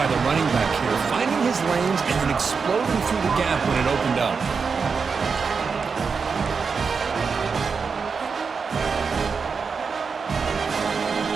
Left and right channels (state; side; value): quieter; left; 5.4 dB